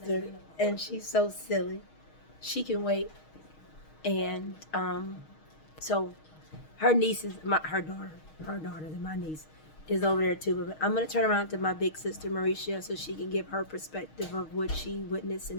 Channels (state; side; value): late; right; 6.4 ms